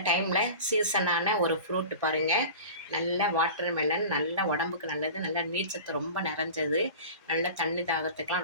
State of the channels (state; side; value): inverted; both; correlation -0.36